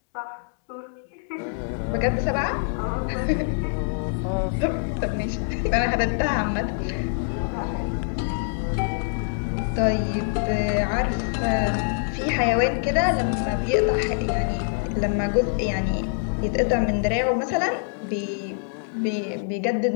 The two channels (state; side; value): silent; right; digital silence